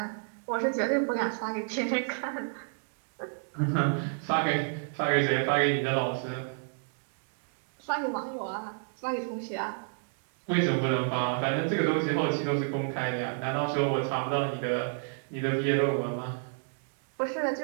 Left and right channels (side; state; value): left; silent; digital silence